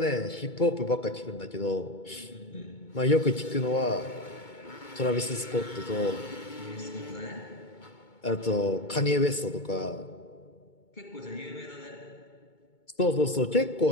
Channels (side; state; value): right; late; 2.2 ms